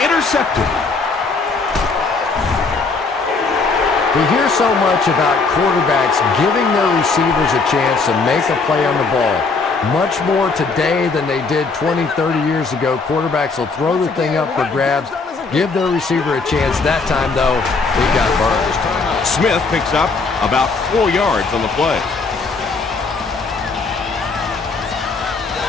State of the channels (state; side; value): quieter; right; 4.2 dB